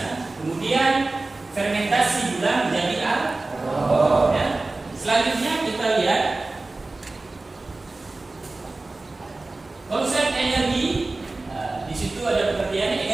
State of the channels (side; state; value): left; quieter; 3.2 dB